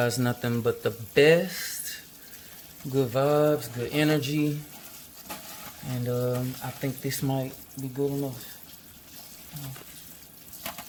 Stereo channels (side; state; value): both; identical; correlation 1.00